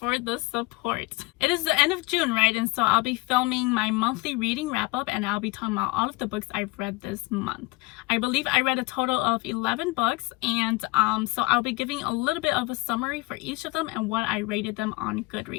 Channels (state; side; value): quieter; right; 23.7 dB